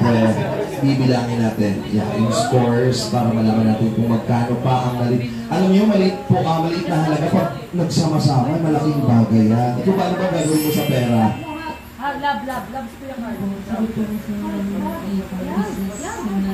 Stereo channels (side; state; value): both; identical; correlation 1.00